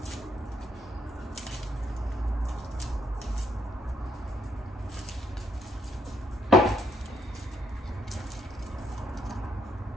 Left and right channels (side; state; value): both; normal; correlation 0.72